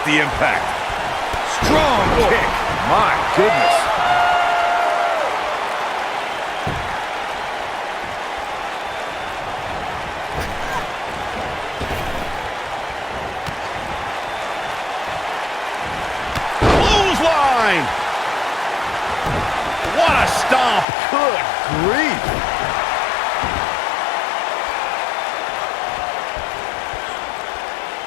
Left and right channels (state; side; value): drops out; right; at 20.9 s